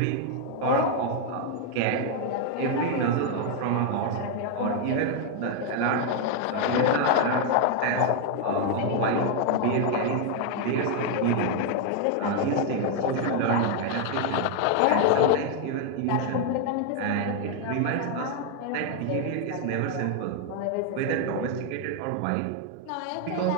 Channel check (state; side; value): different; both; correlation 0.00